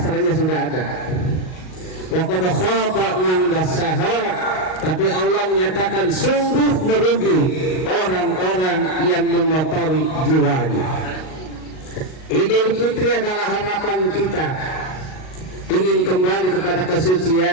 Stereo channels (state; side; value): late; right; 38 ms